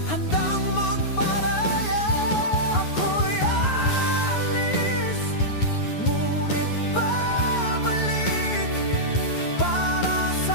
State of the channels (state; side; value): late; right; 9.5 ms